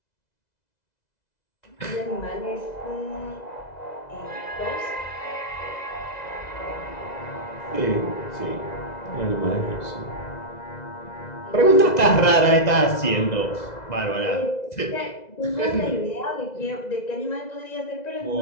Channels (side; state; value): right; late; 2.0 ms